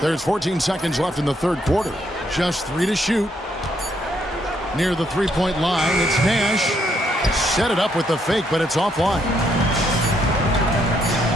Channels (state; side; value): normal; both; correlation 0.73